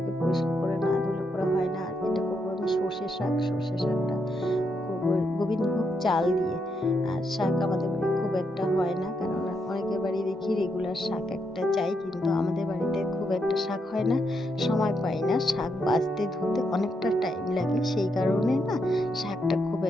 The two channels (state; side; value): normal; both; correlation 0.80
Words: পরিষ্কার করে না ধুলে পরে হয় না। আর এটা করবো আমি সর্ষে শাকটা করবো গোবিন্দভোগ চাল দিয়ে। আর শাক আমাদের বাড়ি খুব একটা হয় না, কেননা অনেকের বাড়ি দেখি রেগুলার শাক একটা চাই, কিন্তু আমাদের বাড়িতে খুব একটা শাক হয় না, সময় পাই না। শাক বাছতে ধুতে অনেকটা টাইম লাগে, সেই কারণে না শাকটা খুব